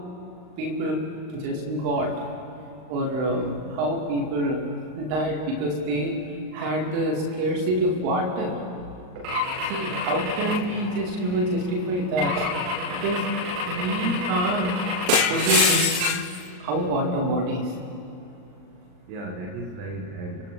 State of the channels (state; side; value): late; left; 39 ms